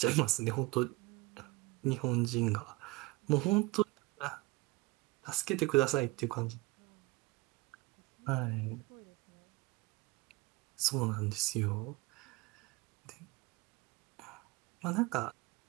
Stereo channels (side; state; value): left; quieter; 21.1 dB